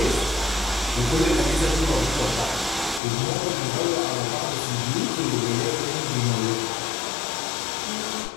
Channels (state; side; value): drops out; right; at 3.0 s